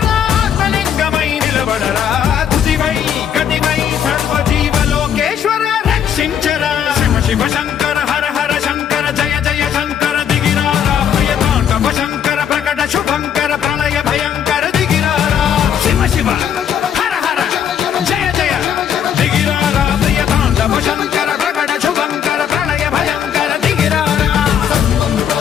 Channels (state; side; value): quieter; right; 8.7 dB